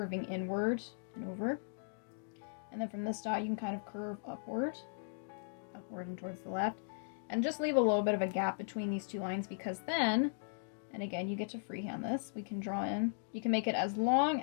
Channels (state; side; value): silent; right; digital silence